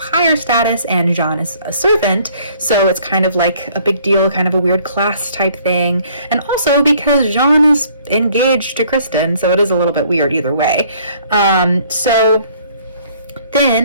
higher status and John is a servant. So it's kind of like a big deal, kind of a weird class type thing. And also because John is engaged to Kristen, so it is a little bit weird either way. So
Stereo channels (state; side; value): inverted; both; correlation -0.60